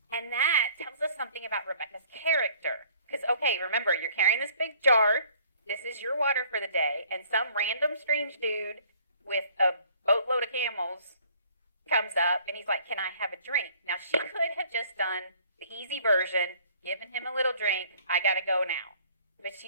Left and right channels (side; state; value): both; inverted; correlation -0.57